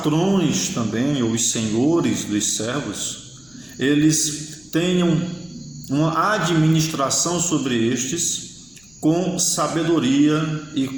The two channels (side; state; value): left; noise; rumble, 28 dB below the sound